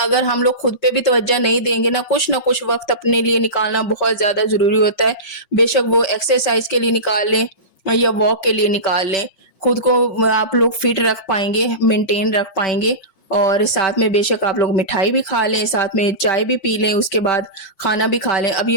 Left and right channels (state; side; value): late; right; 5.6 ms